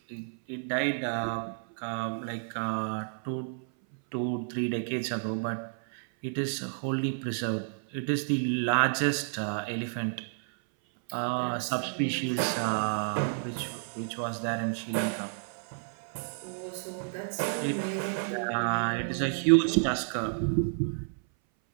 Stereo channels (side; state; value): left; silent; 57 dB below the other